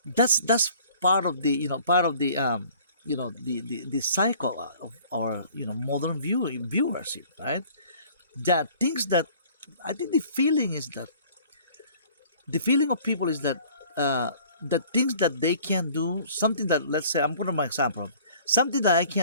That's part of the cycle of our modern viewership, right? That things that I think the feeling of people is that the things that they can do, something that, let's say, I'm putting my example, something that I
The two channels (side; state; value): both; inverted; correlation -0.52